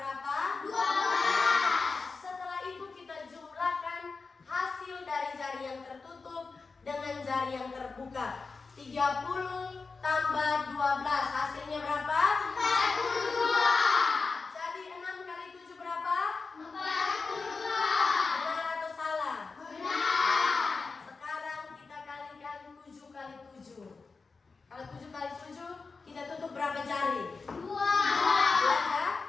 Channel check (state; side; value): quieter; right; 4.4 dB